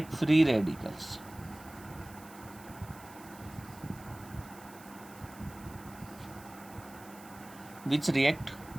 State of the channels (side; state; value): right; noise; hiss, 21 dB below the sound